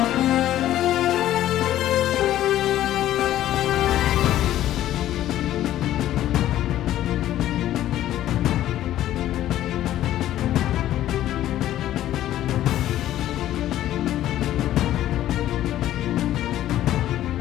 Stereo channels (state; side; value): quieter; right; 13.1 dB